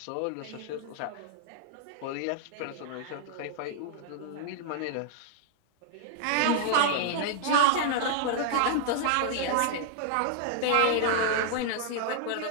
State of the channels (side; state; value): both; different; correlation 0.00